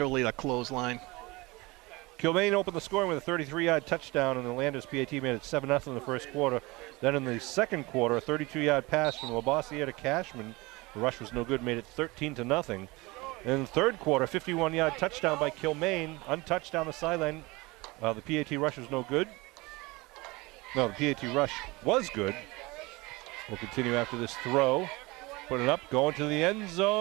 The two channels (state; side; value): quieter; left; 23.3 dB